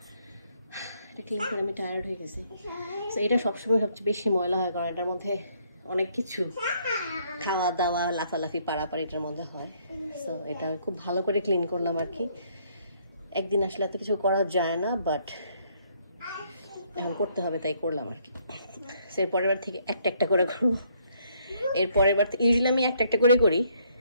এটা ক্লিন করে আমি টায়ার্ড হয়ে গেছি। তো এটা সবসময় সবচেয়ে বেশি ময়লা হয়, কারণ এটার মধ্যে অনেক কিছু খাওয়া দাওয়া লাফালাফি পারাপার এটার মধ্যে হয়। তো এটা খুব ভালো করে ক্লিন করলাম আর কি। একদিন আসলে এত কিছু করা যায় না, বাট এখন করতে হবে তাই করলাম আর কি। এর পরের বার থেকে একটা একটা করে করবো। এর পরের বার ইউজুয়ালি আমি একটা একটা করে করি।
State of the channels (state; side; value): inverted; both; correlation -0.68